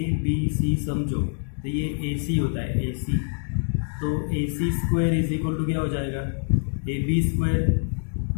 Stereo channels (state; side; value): silent; right; digital silence